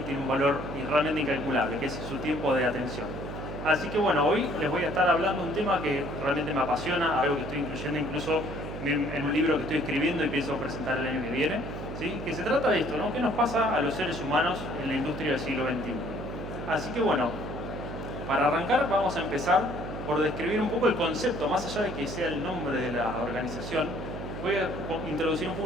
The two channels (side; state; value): right; noise; hum, 8 dB below the sound